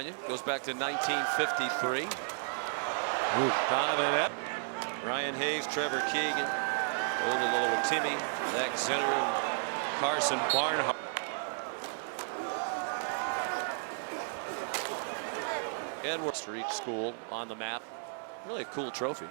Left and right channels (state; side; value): silent; left; digital silence